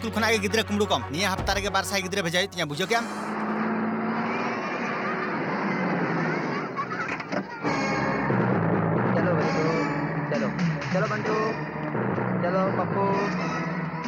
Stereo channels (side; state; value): both; identical; correlation 1.00